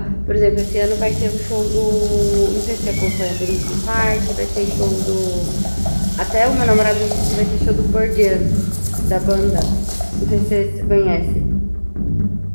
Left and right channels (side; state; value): both; inverted; correlation -1.00